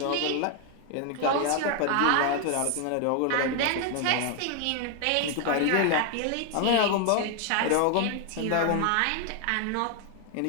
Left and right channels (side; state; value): both; different; correlation 0.00